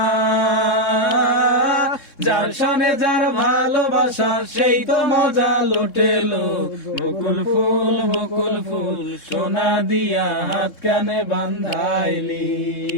যার সনে যার ভালোবাসা সেই তো মজা লোটেলো। বকুল ফুল সোনা দিয়া হাত কানে বান্ধাইলি।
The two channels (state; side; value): late; right; 3.7 ms